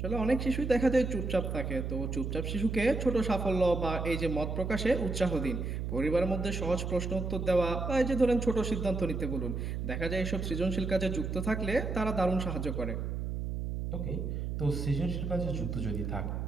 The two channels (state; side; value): noise; right; hum, 3 dB below the sound